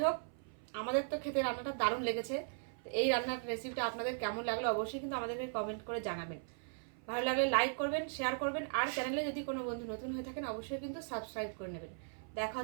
হোক, আমাদের তো খেতে রান্নাটা দারুণ লেগেছে। তো এই রান্নার রেসিপিটা আপনাদের কেমন লাগলো অবশ্যই কিন্তু আমাদেরকে কমেন্ট করে জানাবেন। ভালো লাগলে লাইক করবেন, শেয়ার করবেন, আর চ্যানেলে যদি কোনো বন্ধু নতুন হয়ে থাকেন অবশ্যই কিন্তু সাবস্ক্রাইব করে নেবেন। দেখা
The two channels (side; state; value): left; silent; 52 dB below the other